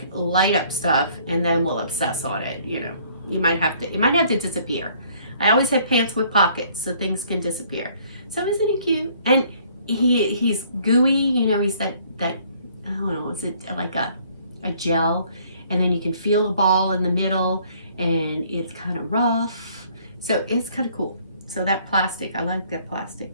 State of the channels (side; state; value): both; inverted; correlation -0.60